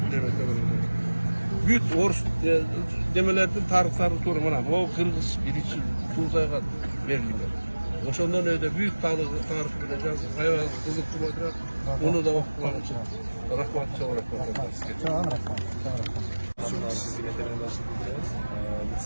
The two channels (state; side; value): inverted; both; correlation -1.00